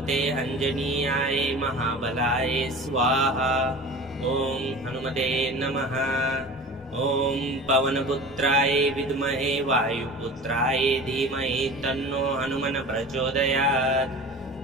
अंजनीयाय महाबलाय स्वाहा। ॐ हनुमते नमः। ॐ पवनपुत्राय विद्महे वायुपुत्राय धीमहि तन्नो हनुमन् प्रचोदयात्।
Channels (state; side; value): normal; both; correlation 0.37